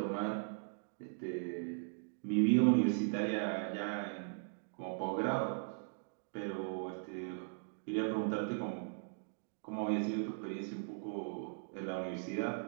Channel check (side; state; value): left; silent; digital silence